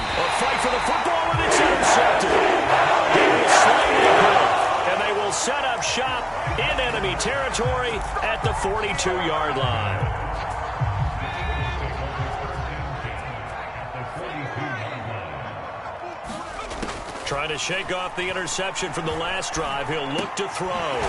fight for the football, and it's intercepted. He will slide it, and they will set up shop in enemy territory at the 42-yard line. Trying to shake off the interception from the last drive. He'll look to throw.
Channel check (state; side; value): identical; both; correlation 1.00